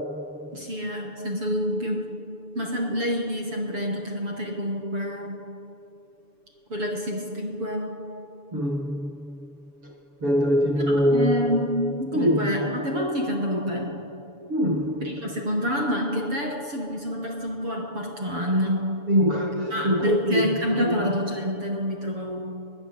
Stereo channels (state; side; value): late; left; 7.0 ms